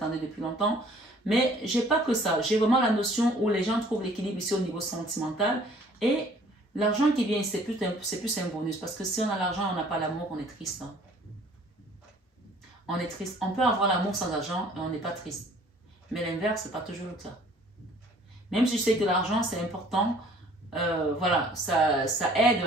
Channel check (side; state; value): both; normal; correlation 0.55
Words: depuis longtemps. Mais je n'ai pas que ça. J'ai vraiment la notion où les gens trouvent l'équilibre ici au niveau sentimental. Et l'argent qui vient ici, c'est plus un bonus. Parce que si on a l'argent et on n'a pas l'amour, on est triste. Hein. On est triste. On peut avoir l'amour sans argent et on n'est pas triste. Mais l'inverse, ce n'est pas toujours le cas. Même si je sais que l'argent, c'est important, voilà, ça aide